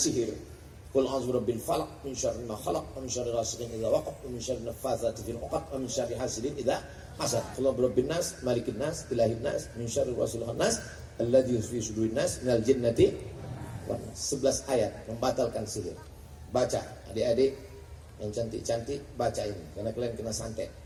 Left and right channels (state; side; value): identical; both; correlation 1.00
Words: Qul a'udzu birabbil falaq min syarri ma khalaq wa min syarri ghasiqin idza waqab wa min syarri naffatsati fil 'uqad wa min syarri hasidin idza hasad. Qul birabbin nas malikin nas ilahin nas min syarri wasilin nas alladzi fi sudurin nas minal jinnati wan nas. 11 ayat membatalkan sihir. Baca adik-adik yang cantik-cantik, baca ini karena kalian kena santet.